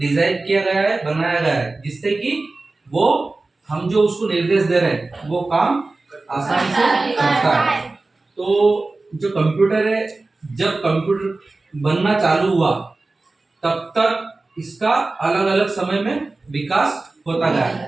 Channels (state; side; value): quieter; left; 3.3 dB